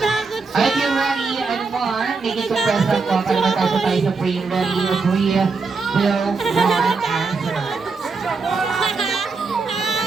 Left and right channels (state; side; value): quieter; left; 4.4 dB